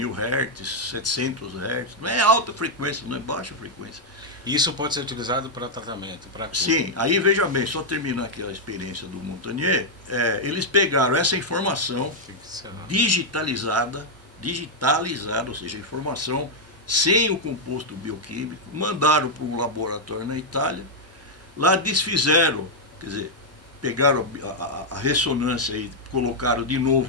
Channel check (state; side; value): normal; both; correlation -0.03